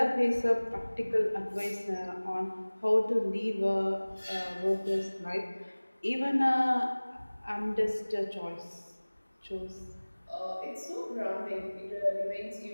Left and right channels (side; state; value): both; inverted; correlation -1.00